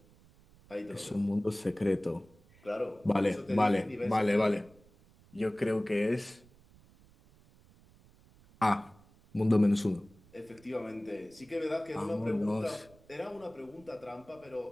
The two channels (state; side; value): noise; right; rumble, 27 dB below the sound